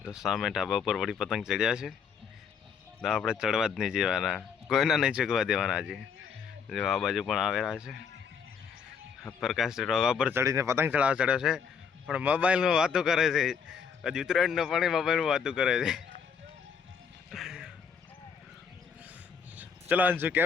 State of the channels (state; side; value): quieter; right; 6.5 dB